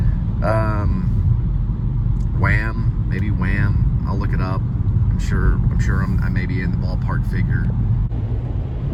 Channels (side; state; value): both; identical; correlation 1.00